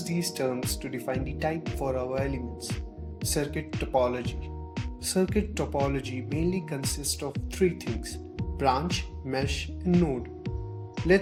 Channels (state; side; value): identical; both; correlation 1.00